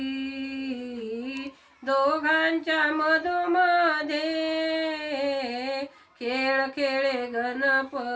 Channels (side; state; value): both; identical; correlation 1.00